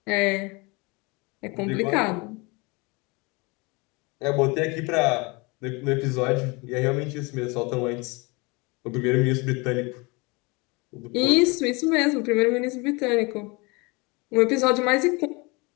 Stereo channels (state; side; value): quieter; right; 27.1 dB